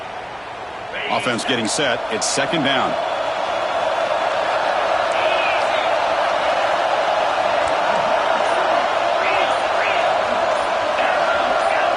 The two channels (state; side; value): identical; both; correlation 1.00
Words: Offense getting set. It's second down.